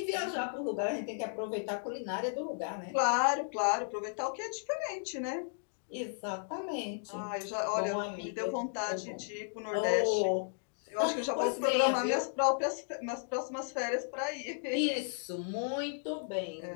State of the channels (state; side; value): silent; right; digital silence